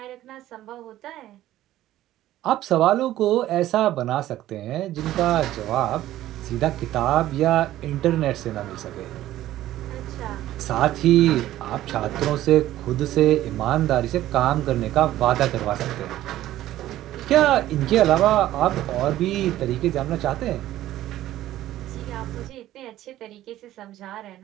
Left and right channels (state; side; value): quieter; left; 14.1 dB